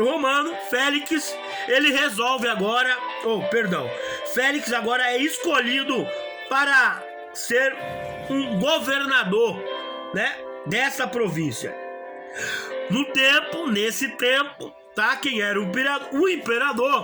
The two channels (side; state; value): both; identical; correlation 1.00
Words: Romano, Félix, ele resolve agora, Félix agora é escolhido para ser um governador, né, dessa província. Nesse tempo, tá, quem era o